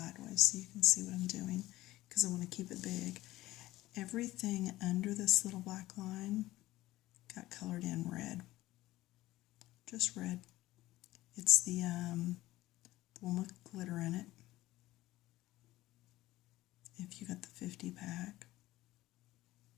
so you can see what I'm doing because I want to keep it big. Everything under this little black line got colored in red. Just red. It's the one with glitter in it. If you got the 50 pack,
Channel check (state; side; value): quieter; right; 16.8 dB